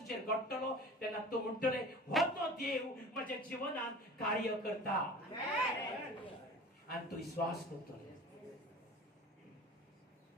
घडटलो तेन्ना तूं म्हणटले हो तो देव म्हज्या जिवनांत कार्य करता आनी तूं विश्वास करतले.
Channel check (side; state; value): both; normal; correlation 0.40